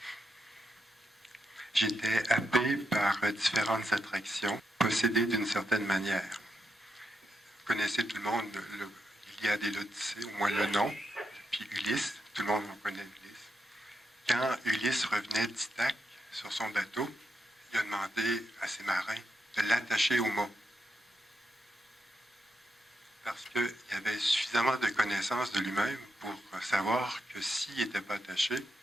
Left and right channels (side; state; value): both; normal; correlation 0.84